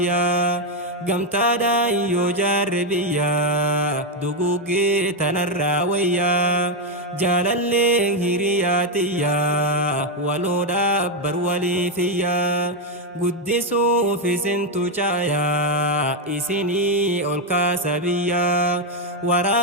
قمتا دا يجار بيا دقوقي تنرى ويا جالالي هيرياتيا ولو دابر ولي فيا قدسوا في سنتو جايا إسيني أولكا سبيا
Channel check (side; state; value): both; normal; correlation 0.04